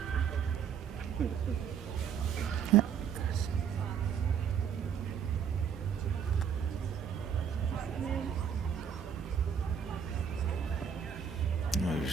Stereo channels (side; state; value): left; quieter; 7.5 dB